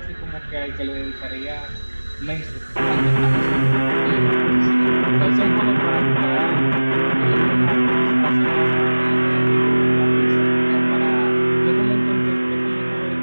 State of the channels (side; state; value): both; inverted; correlation -1.00